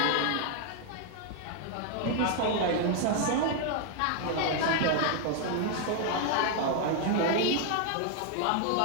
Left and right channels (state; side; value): different; both; correlation 0.00